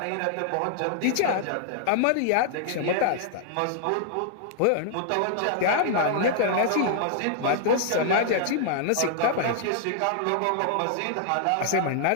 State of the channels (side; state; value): both; different; correlation -0.01